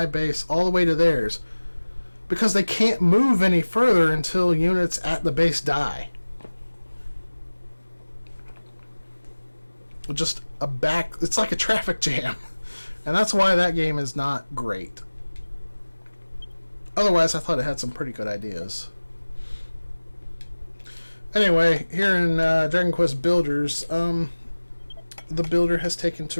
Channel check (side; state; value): both; inverted; correlation -1.00